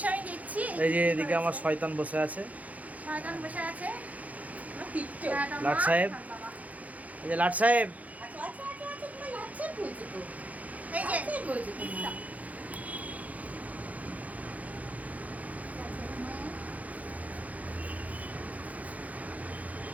আমি দেখছি। এই যে এদিকে আমার শয়তান বসে আছে, শয়তান বসে আছে লাট সাহেব। এই যে লাট সাহেব, এই যে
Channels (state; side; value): late; left; 0.073 ms